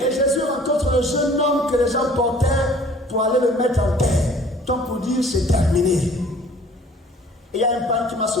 Et Jésus rencontre le jeune homme que les gens portaient pour aller le mettre en terre. Donc pour dire c'est terminé. Et il y a un père qui m'a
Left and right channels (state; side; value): normal; both; correlation 0.52